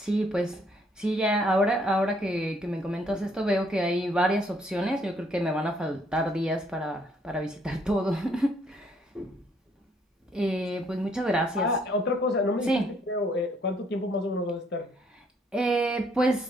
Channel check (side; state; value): both; normal; correlation 0.67